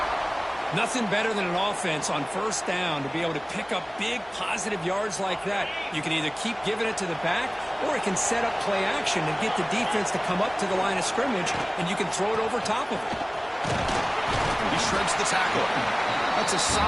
Nothing better than an offense on first down to be able to pick up big positive yards like that. You can either keep giving it to the back, or it can set up play action and get the defense to come up to the line of scrimmage, and you can throw it over top of it. He shreds the tackle. That's a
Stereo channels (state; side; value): identical; both; correlation 1.00